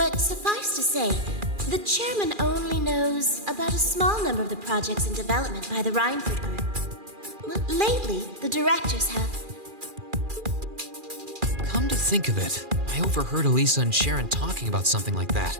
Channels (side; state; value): left; late; 2.4 ms